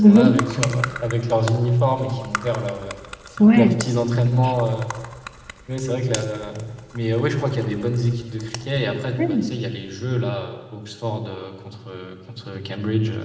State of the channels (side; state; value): both; identical; correlation 1.00